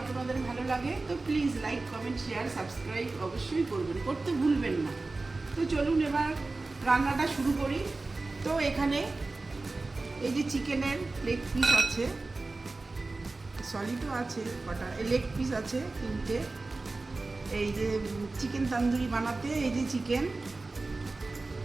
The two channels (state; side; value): quieter; left; 3.4 dB